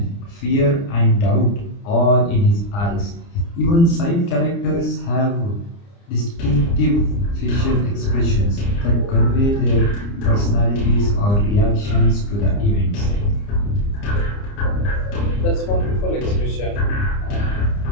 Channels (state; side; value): late; right; 29 ms